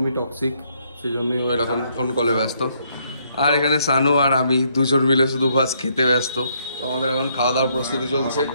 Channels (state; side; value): inverted; both; correlation -0.71